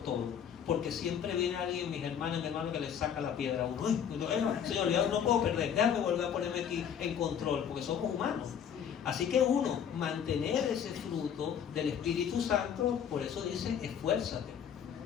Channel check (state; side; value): quieter; right; 8.4 dB